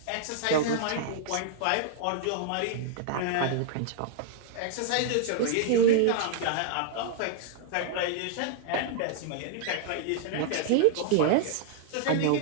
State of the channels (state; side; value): different; both; correlation -0.01